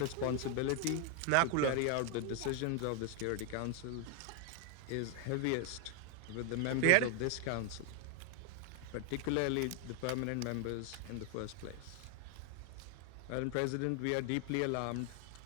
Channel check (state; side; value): different; both; correlation 0.00